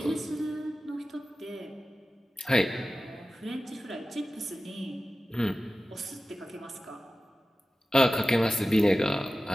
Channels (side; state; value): both; normal; correlation 0.95